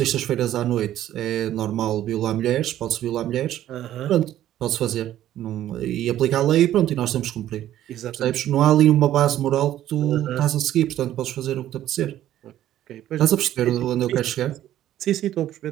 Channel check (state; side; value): quieter; left; 12.5 dB